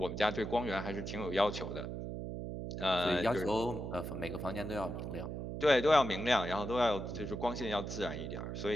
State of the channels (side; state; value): right; noise; hum, 5 dB below the sound